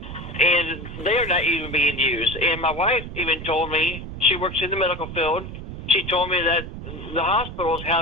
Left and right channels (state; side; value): noise; right; rumble, 10 dB below the sound